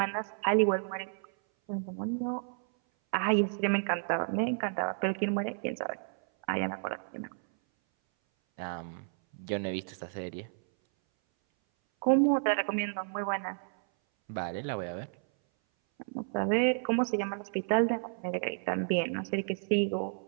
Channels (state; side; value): silent; left; 57 dB below the other